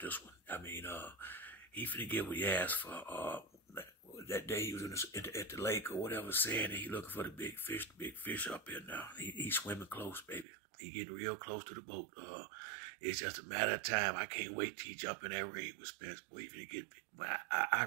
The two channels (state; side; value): drops out; left; at 10.5 s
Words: this one. I mean, he finna get what he asked for. That day he was at the lake or whatever, saying that he looking for the big fish up here now. He swimming close, baby. He getting real close to the boat. It's just a matter of time. I can't wait till he jump in that ring with Spence. Boy, he finna get. I